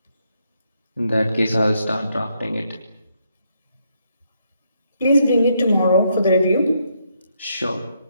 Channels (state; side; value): inverted; both; correlation -0.76